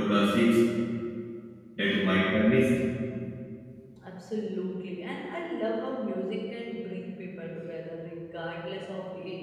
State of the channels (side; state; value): both; identical; correlation 1.00